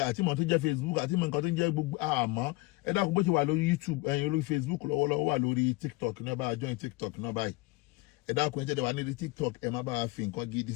àti ìmọ̀ tó ń jẹ́ Facebook àti ìmọ̀ nǹkan tó ń jẹ́ gbogbo àmọ́ ẹ dákun bó ti wà lórí YouTube ẹ̀yin lórí Facebook lọ́wọ́lọ́wọ́ wà lórí TikTok náà bá join TikTok náà báyìí ẹ dákun ẹ jẹ́ wà nílùú TikTok ẹ má bá a fi nǹkan gidi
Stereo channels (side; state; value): right; quieter; 21.8 dB